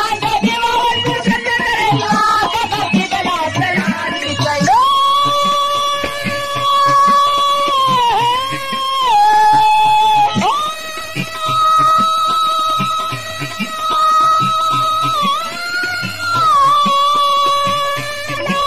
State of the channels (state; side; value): identical; both; correlation 1.00